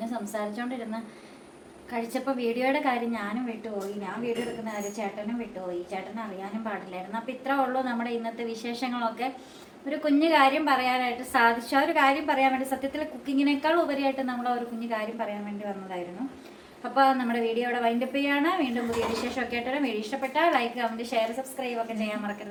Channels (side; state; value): both; identical; correlation 1.00